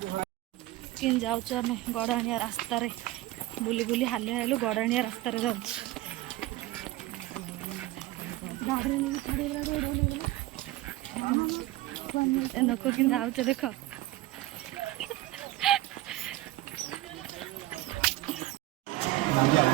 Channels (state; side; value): quieter; left; 17.2 dB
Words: କେମିତି ଯାଉଛୁ ଆମେ ଗଡ଼ାଣିଆ ରାସ୍ତାରେ ବୁଲି ବୁଲି ହାଲିଆ ହେଲୁ ଗଡ଼ାଣିଆ ରାସ୍ତାରେ ଯାଉଛୁ। ଏ ଲୋକ କେମିତି ଯାଉଛେ ଦେଖ।